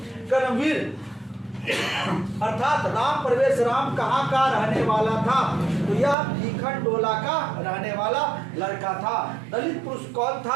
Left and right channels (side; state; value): left; drops out; at 6.2 s